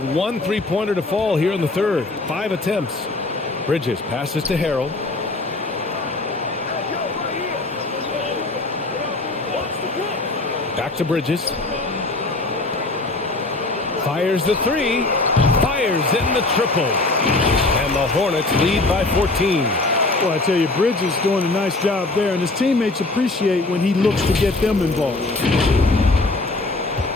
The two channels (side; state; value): right; quieter; 3.1 dB